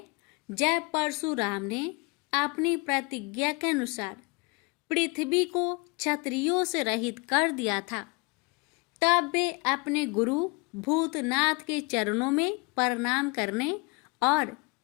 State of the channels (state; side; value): quieter; right; 28.4 dB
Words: जब परशुराम ने अपनी प्रतिज्ञा के अनुसार पृथ्वी को क्षत्रियों से रहित कर दिया था। तब वे अपने गुरु भूतनाथ के चरणों में प्रणाम करने और